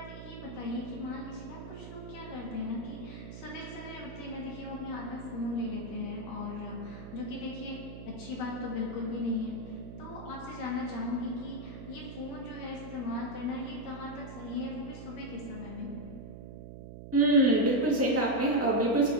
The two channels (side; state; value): right; noise; hum, 11 dB below the sound